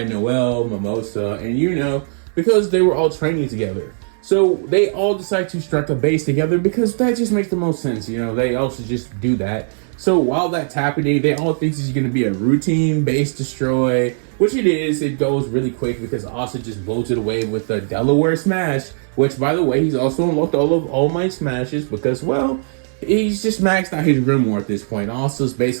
Noel, Mimosa, and, you know, because they were all training together. So they all decide to strike a base together because that just makes the most sense. You know, they also just do that. So while that's happening, they all think this is going to be a routine base destroy, which it is. It goes really quick because Asta just blows it away with the Delaware Smash, which, by the way, he's also unlocked all of All Might Smashes because, well, he's just maxed out his Grimoire at this point. Asta's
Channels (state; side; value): silent; left; digital silence